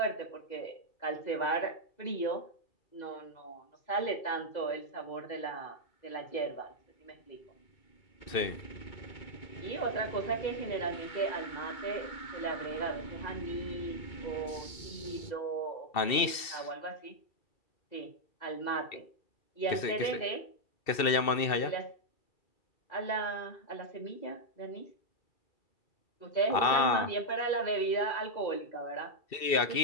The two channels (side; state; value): right; late; 2.7 ms